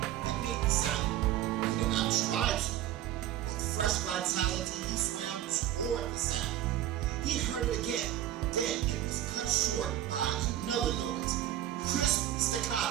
that made the sound. He did not try to. With fresh vitality, he swam toward the sound. He heard it again. Then it was cut short by another noise. Crisp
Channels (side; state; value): left; quieter; 12.6 dB